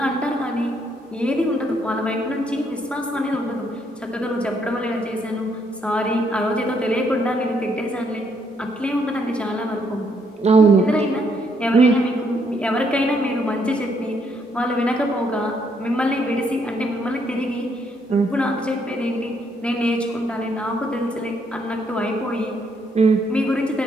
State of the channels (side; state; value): both; normal; correlation 0.72